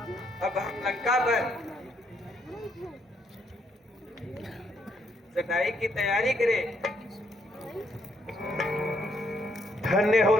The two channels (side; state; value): both; normal; correlation 0.73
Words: अब हम लंका पर चढ़ाई की तैयारी करें। धन्य हो